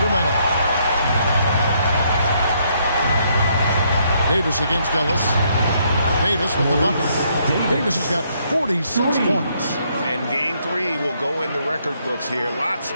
Davis against Ellis. Davis with the bucket. Davis has got 46 points. And game 3 will go in the record books here. Lots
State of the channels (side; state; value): both; inverted; correlation -0.72